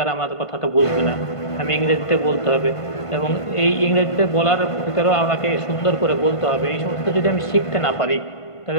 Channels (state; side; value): late; right; 1.5 ms